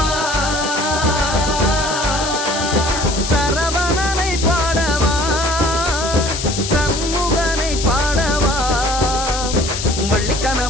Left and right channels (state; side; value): noise; left; hiss, 5 dB below the sound